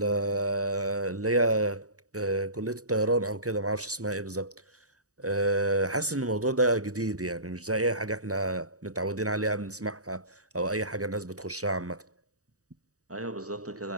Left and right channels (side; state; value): left; late; 0.66 ms